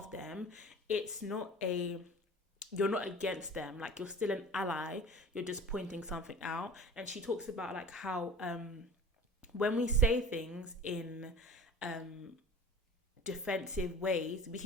them, it's not you're not against them. Like, you're still an ally. You're just pointing something out. And she talks about like how when we say things in defensive ways, we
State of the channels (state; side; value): normal; both; correlation 0.41